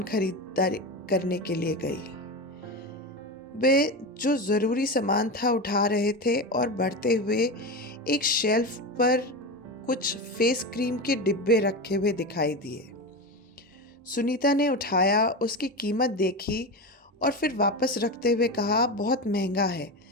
खरीदारी करने के लिए गई। वे जो ज़रूरी सामान था उठा रहे थे और बढ़ते हुए एक शेल्फ पर कुछ फेस क्रीम के डिब्बे रखे हुए दिखाई दिए। सुनीता ने उठाया, उसकी कीमत देखी और फिर वापस रखते हुए कहा, बहुत महंगा है,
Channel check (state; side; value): normal; both; correlation 0.21